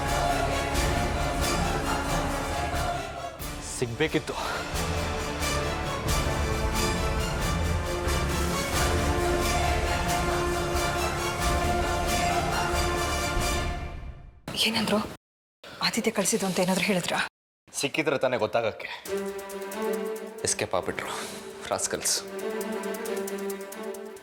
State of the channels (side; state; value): both; identical; correlation 1.00